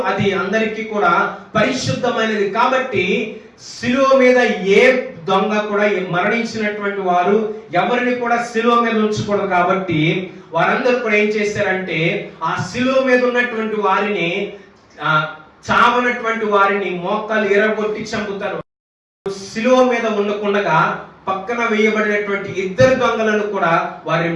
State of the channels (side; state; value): both; identical; correlation 1.00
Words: అది అందరికీ కూడా పరిశుద్ధమైనది. కాబట్టి శిలువ మీద ఏ దొంగ కూడా మరణించినటువంటి వారు ఎవరిని కూడా శిలువ మీద ఉంచకూడదు. కాబట్టి వారందరూ కూడా ఏం చేశారంటే, ఆ శిలువ మీద ఉన్నటువంటి వారిని, చావనటువంటి వారిని మోకాలు ఎరగొట్టి చంపుతారు. శిలువ మీద ఉండకుండా పక్కన వేయబడినటువంటి ఇద్దరు దొంగలను కూడా వారి